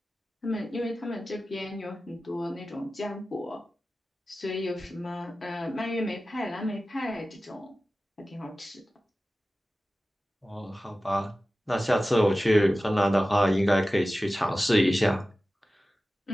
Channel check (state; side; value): normal; both; correlation 0.95